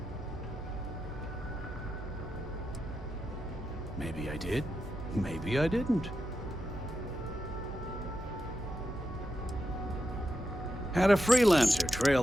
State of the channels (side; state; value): right; noise; hum, 11 dB below the sound